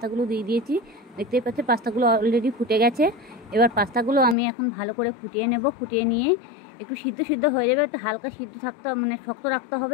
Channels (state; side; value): drops out; right; at 4.4 s